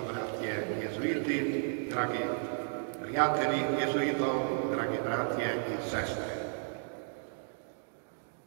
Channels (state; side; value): silent; left; 55 dB below the other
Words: jezuiti, dragi prijatelji jezuitov, dragi bratje in sestre.